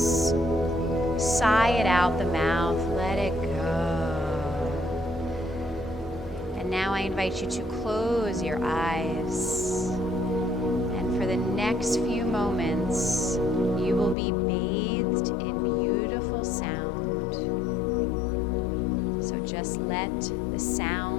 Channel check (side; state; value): right; drops out; at 14.2 s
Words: Sigh it out the mouth, let it go. And now I invite you to close your eyes. And for the next few moments, you will be bathed in beautiful sound. So just let the